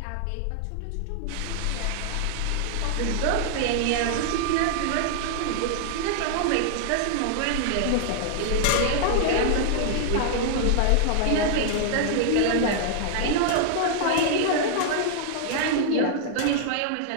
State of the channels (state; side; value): different; both; correlation -0.01